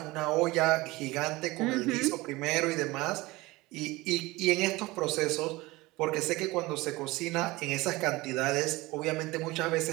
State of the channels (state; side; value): quieter; left; 20.9 dB